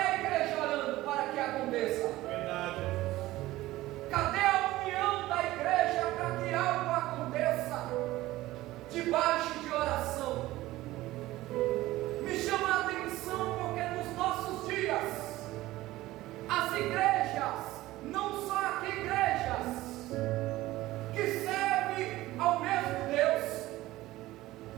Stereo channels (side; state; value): left; quieter; 17.0 dB